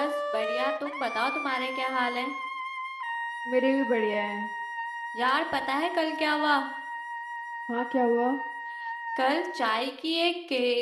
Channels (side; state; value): both; identical; correlation 1.00